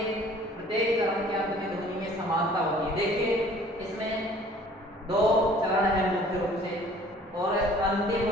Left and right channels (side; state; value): both; normal; correlation 0.52